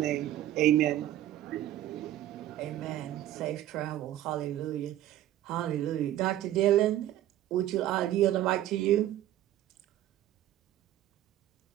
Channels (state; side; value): quieter; left; 13.1 dB